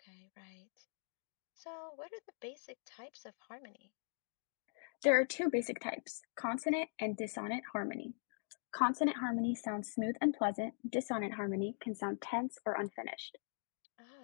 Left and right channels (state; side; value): silent; right; digital silence